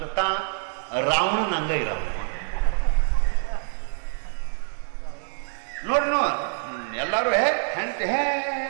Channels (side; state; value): left; silent; digital silence